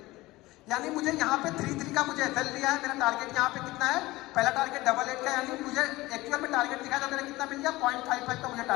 यानी मुझे यहाँ पे 3-3 का मुझे एसएल लिया है, मेरा टारगेट यहाँ पे कितना है, पहला टारगेट 88 का, यानी मुझे एक्चुअल में टारगेट दिखाया तो मेरा कितना मिल गया 0.55 का मुझे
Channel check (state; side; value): quieter; right; 19.4 dB